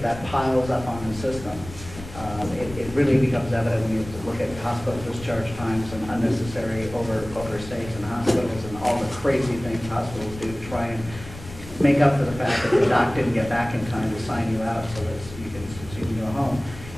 that piles up on the system, it really becomes evident when you look at hospital discharge times and unnecessary overstays in hospitals and all the crazy things hospitals do to try and make up for the fact that the doc didn't get back in time to sign you out so that you can go home.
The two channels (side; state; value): left; noise; rumble, 14 dB below the sound